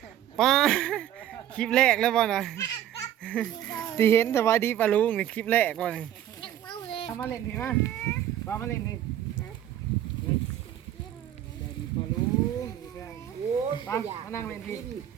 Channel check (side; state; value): left; quieter; 11.4 dB